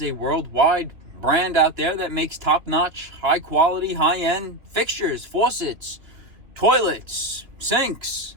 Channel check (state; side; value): late; left; 3.2 ms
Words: a worldwide brand out there that makes top-notch, high-quality, high-end fixtures, faucets, toilets, sinks,